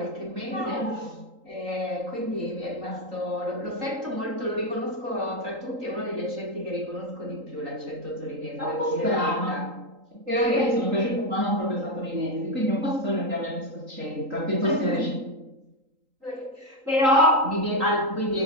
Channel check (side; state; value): left; late; 3.8 ms